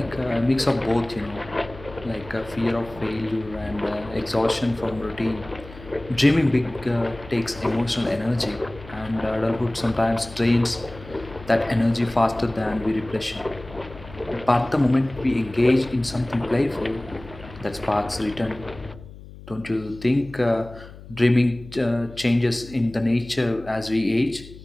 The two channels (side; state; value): left; noise; hum, 17 dB below the sound